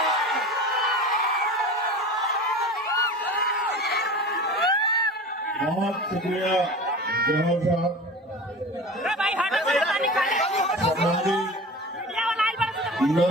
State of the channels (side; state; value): both; normal; correlation 0.35